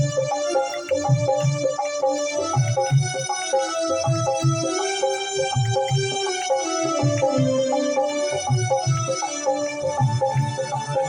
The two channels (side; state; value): both; identical; correlation 1.00